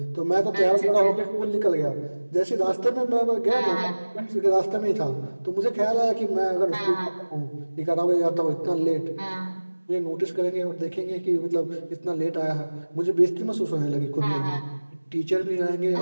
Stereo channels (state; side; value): inverted; both; correlation -1.00